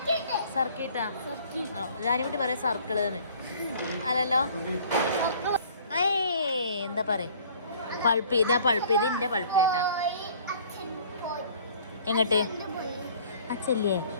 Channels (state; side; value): inverted; both; correlation -0.53